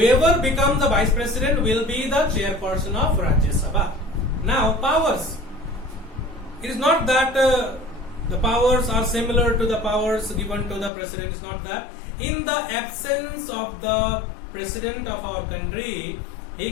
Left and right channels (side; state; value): right; drops out; at 10.9 s